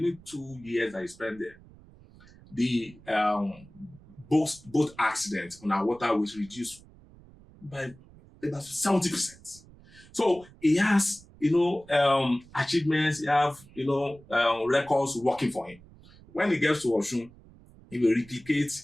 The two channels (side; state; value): right; noise; rumble, 23 dB below the sound